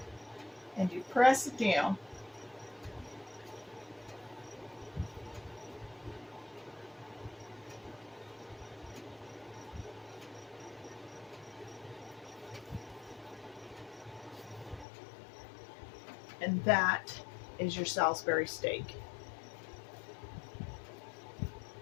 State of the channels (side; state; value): right; drops out; at 14.9 s